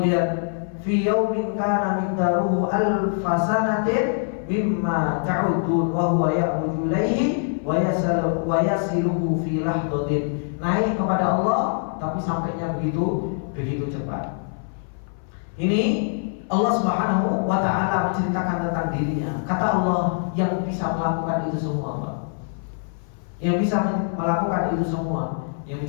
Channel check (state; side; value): silent; right; 59 dB below the other